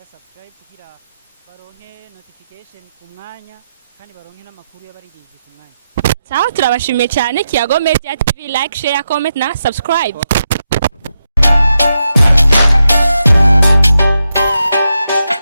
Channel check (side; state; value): both; inverted; correlation -0.86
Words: subscribe kugira baronke notification ku mwanya kandi baronke n'amakuru y'abaririmbyi ku mwanya. Sawa turabashimiye cyane. Kiyago Media TV, like, share, comment na subscribe.